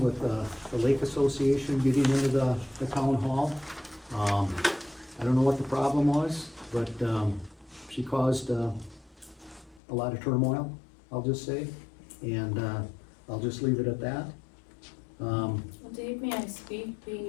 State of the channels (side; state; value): right; drops out; at 9.8 s